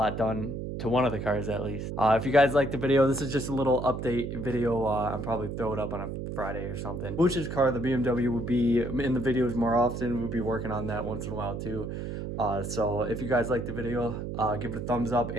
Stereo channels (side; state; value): right; noise; hum, 5 dB below the sound